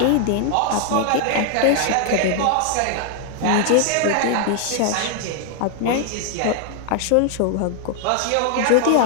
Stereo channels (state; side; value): different; both; correlation 0.00